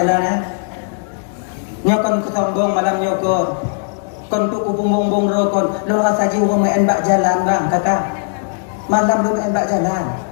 ya nyokon kesombong malam nyokon kon tu ku bumbung rokon lo saji urang main bak jalan bang kakak malam lo main bak jalan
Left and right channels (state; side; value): silent; right; digital silence